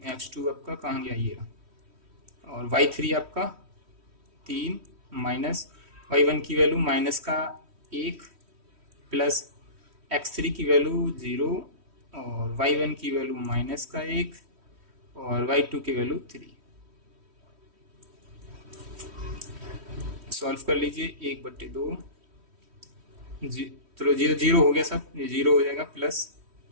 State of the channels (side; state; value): left; late; 3.1 ms